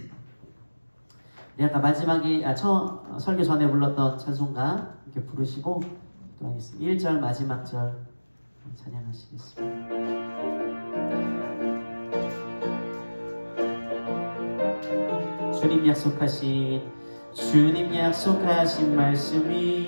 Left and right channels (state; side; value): inverted; both; correlation -1.00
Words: 네, 아까 마지막에 설교 전에 불렀던 찬송가 이렇게 부르시고 기도하겠습니다. 1절 마지막 절 찬양하시겠습니다. 주님 약속하신 말씀